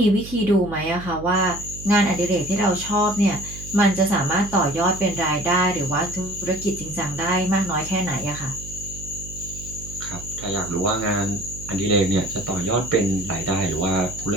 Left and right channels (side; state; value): right; noise; hum, 13 dB below the sound